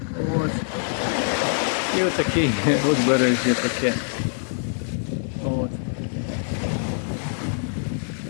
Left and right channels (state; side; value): silent; right; digital silence